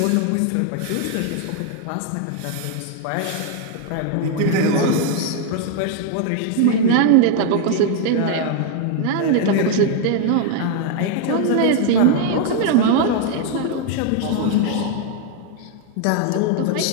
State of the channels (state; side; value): different; both; correlation 0.01